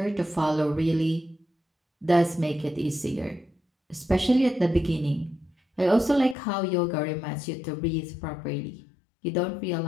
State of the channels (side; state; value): right; drops out; at 6.4 s